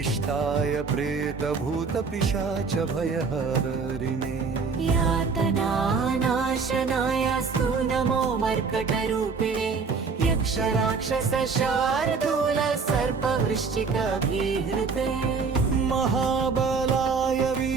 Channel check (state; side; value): quieter; left; 5.0 dB